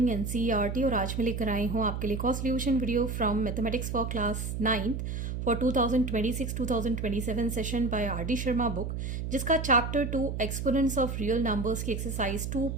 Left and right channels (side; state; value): right; noise; hum, 4 dB below the sound